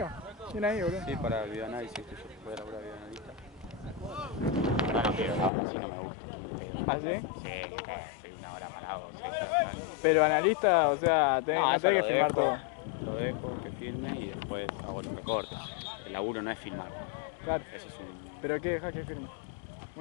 Bien ahí, boludo. Sí, para el videoanálisis, que yo puedo laburar videoanalista. No, no quiero, así no me gusta. ¿Ah, sí? Sí, estoy una hora parado. Pero analista, o sea, no tenés que filmar todo. Lo dejo, que filme y después hago los recortes. El laburo no es filmar. Claro. Eso es un... ¿Pero qué dejas que filme?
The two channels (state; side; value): drops out; right; at 5.5 s